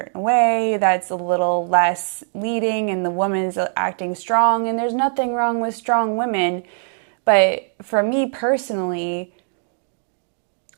way that's a little less leading and the woman is acting strong, and there's nothing wrong with strong women. But for me personally,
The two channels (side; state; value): left; silent; 61 dB below the other